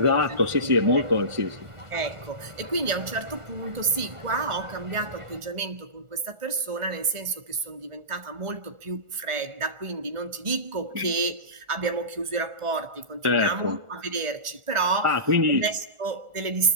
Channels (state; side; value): late; left; 1.4 ms